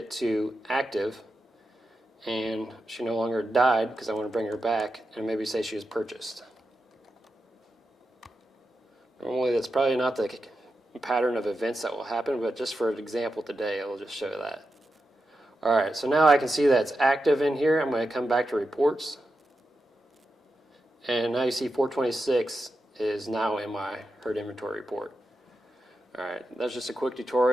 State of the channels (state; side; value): normal; both; correlation 0.89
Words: to active. And she no longer died because I want to bring her back and maybe say she was purchased. Normally that's probably not the pattern of events that will happen, but just for an example today, I will just show that. All right, so now I can see that it's active in here. I'm going to come back to reports. And now you see 426 is now in my herd inventory report. All right, that's just a quick